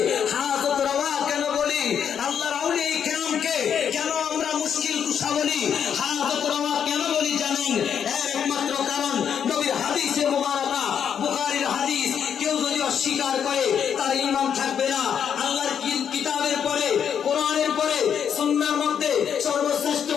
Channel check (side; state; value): right; quieter; 8.1 dB